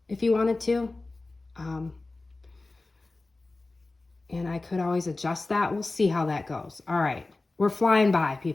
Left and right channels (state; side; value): quieter; right; 3.2 dB